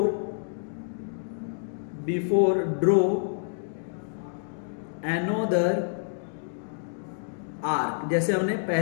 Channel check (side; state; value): right; silent; digital silence